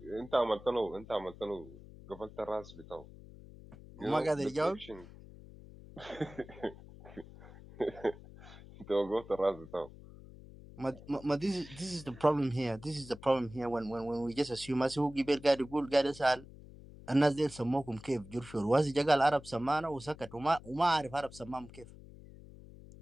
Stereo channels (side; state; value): left; noise; hum, 18 dB below the sound